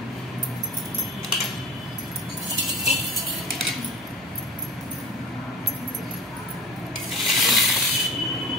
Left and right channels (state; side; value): normal; both; correlation 0.36